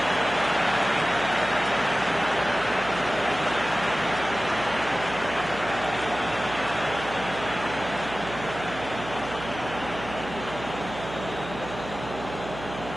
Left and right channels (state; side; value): noise; right; hum, 11 dB below the sound